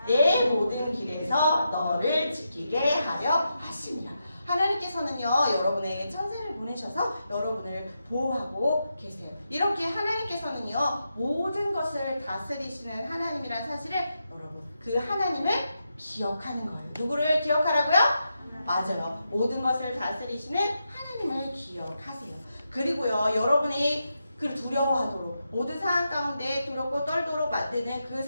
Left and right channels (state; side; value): inverted; both; correlation -0.86